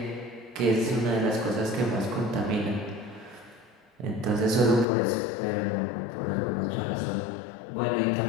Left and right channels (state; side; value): drops out; right; at 4.9 s